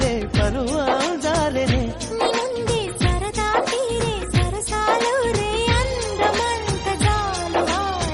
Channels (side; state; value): both; identical; correlation 1.00